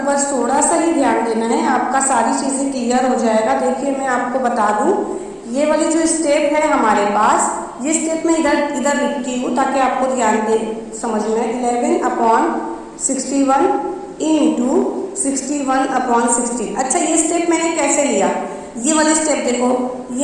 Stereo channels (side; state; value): both; identical; correlation 1.00